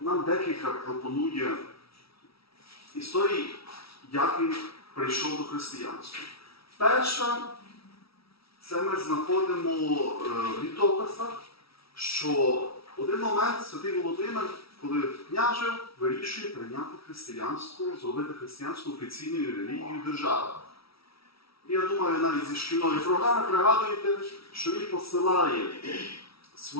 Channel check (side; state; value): right; late; 0.76 ms